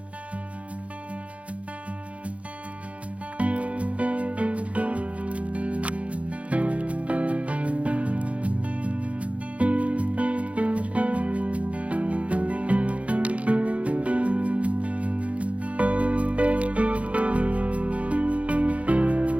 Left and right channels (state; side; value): late; left; 0.064 ms